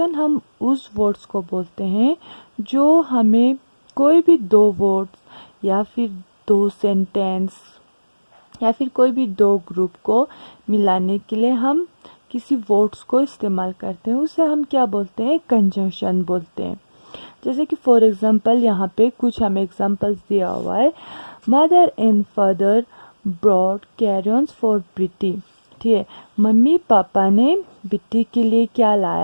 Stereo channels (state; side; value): inverted; both; correlation -1.00